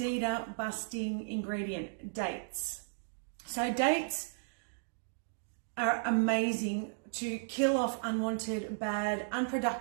busting ingredient, dates. So dates are amazing to kill off unwanted, bad,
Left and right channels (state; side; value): silent; left; digital silence